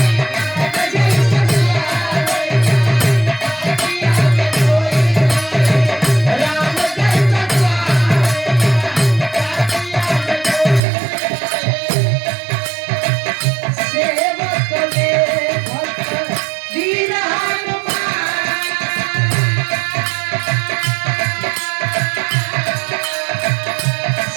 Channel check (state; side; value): drops out; left; at 10.8 s